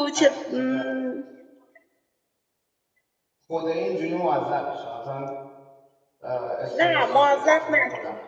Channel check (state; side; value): identical; both; correlation 1.00